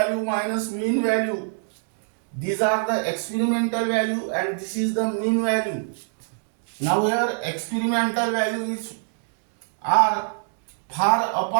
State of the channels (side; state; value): left; silent; digital silence